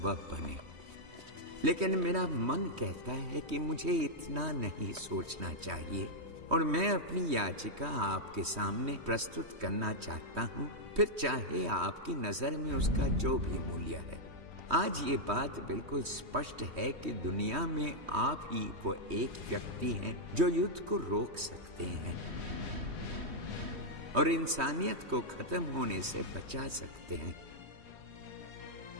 बने। लेकिन मेरा मन कहता है कि मुझे इतना नहीं सोचना चाहिए, और मैं अपनी याचिका आपके सामने प्रस्तुत करना चाहता हूँ, फिर चाहे आपकी नजर में उसका जो भी मूल्य है। आज ये बात बिल्कुल स्पष्ट है कि दुनिया में आप ही वो एक व्यक्ति हैं जो युद्ध को रोक सकते हैं और इंसानियत को खत्म होने से बचा सकते हैं।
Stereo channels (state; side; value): late; left; 3.2 ms